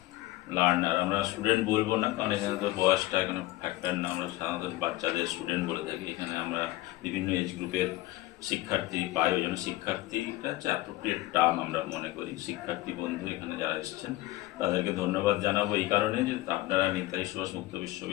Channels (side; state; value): right; quieter; 18.0 dB